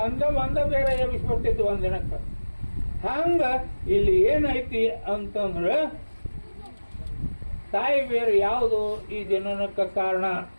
ಒಂದ ಬೇರೆ ಎಬ್ಬಿಸ್ಬಿಡ್ತಿತ್ತು ಒಂದಿನಕ್ಕೆ. ಹಂಗ ಇಲ್ಲಿ ಏನೈತಿ ಅಂತಂದ್ರೆ ತಾಯಿ ಬೇರೆ ಯಾವುದು ಈ ಜನನಕ್ಕೆ ಕಾರಣ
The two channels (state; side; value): inverted; both; correlation -1.00